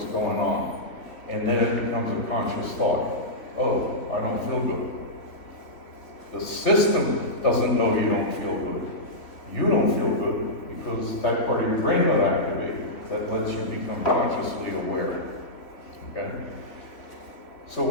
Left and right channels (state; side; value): late; right; 3.3 ms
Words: going on. And then it becomes a conscious thought. Oh, I don't feel good. The system doesn't know you don't feel good. You don't feel good because that part of your brain got activated that lets you become consciously aware. Okay? So